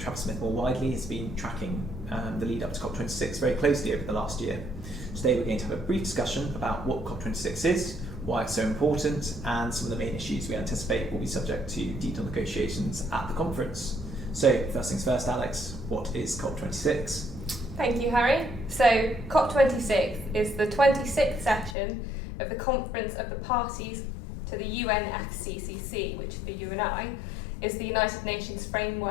Smith more widely, has been tracking the lead up to COP26 very closely over the last year. Today we're going to have a brief discussion about what COP26 is, why it's so important, and some of the main issues we anticipate will be subject to detailed negotiations at the conference. So first things first, Alex, what is COP26? Thank you, Harrie. So COP26 is the 26th session of the Conference of the Parties to the UNFCCC, which for you and I is the United Nations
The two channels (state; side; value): drops out; right; at 21.8 s